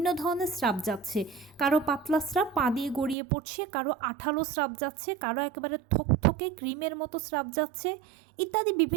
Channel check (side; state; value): left; drops out; at 3.2 s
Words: ধরনের স্রাব যাচ্ছে, কারো পাতলা স্রাব পা দিয়ে গড়িয়ে পড়ছে, কারো আঠালো স্রাব যাচ্ছে, কারো একেবারে থকথকে ক্রিমের মতো স্রাব যাচ্ছে, ইত্যাদি